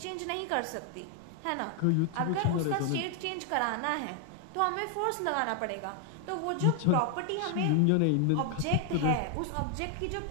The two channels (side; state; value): both; different; correlation 0.00